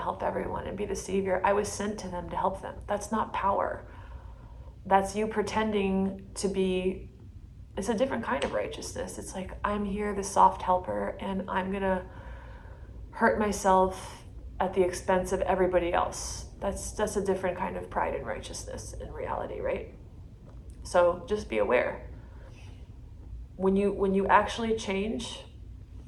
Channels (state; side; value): identical; both; correlation 1.00